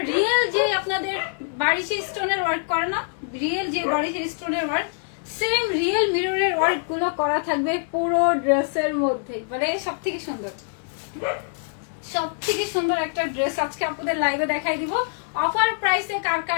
রিয়েল যে আপনাদের বারিশি স্টোনের ওয়ার্ক করে না, রিয়েল যে বারিশি স্টোনের ওয়ার্ক, সেম রিয়েল মিররের ওয়ার্ক গুলো করা থাকবে পুরো ড্রেসের মধ্যে। মানে সব থেকে সুন্দর, সব থেকে সুন্দর একটা ড্রেস আজকে আপনাদের লাইভে দেখাই দিব। অফার প্রাইসে কার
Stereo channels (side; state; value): right; silent; 57 dB below the other